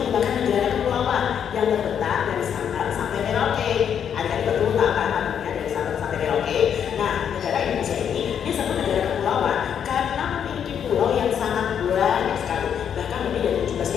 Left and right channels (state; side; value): quieter; right; 8.4 dB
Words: negara kepulauan yang terbentang dari Sabang sampai Merauke. Adik-adik betul tak kan artinya dari Sabang sampai Merauke? Nah, negara Indonesia ini disebut negara kepulauan karena memiliki pulau yang sangat banyak sekali, bahkan lebih dari